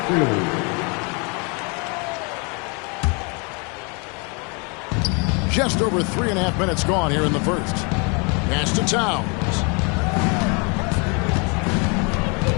crew. Just over 3.5 minutes gone here in the first. Pass to Towns.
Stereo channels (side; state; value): right; quieter; 33.2 dB